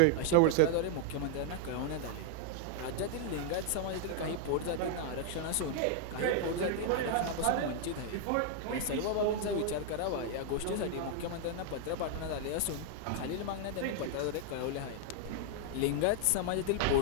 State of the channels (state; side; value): different; both; correlation 0.00